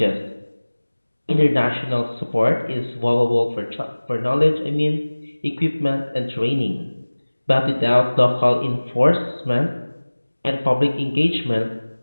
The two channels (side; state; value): both; inverted; correlation -1.00